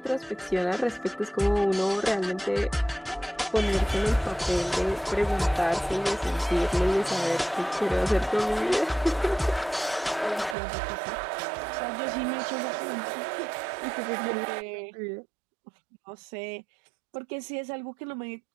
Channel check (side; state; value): left; drops out; at 10.6 s